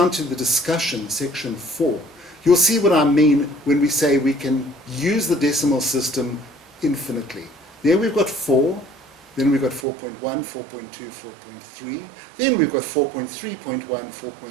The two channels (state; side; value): drops out; left; at 9.9 s